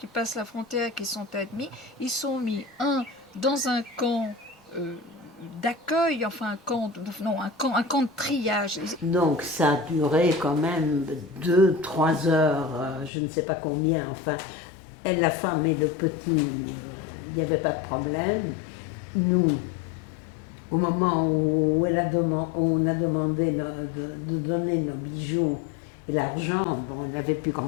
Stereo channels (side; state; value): right; drops out; at 13.1 s